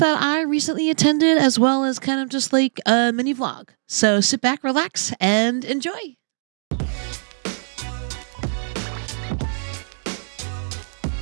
I recently attended, as well as kind of just like a mini vlog. So sit back, relax, and enjoy.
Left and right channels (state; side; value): silent; left; digital silence